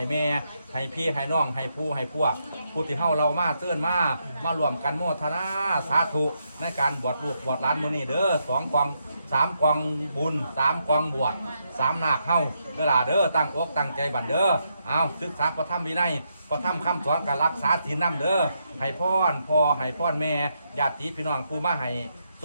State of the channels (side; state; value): both; inverted; correlation -0.79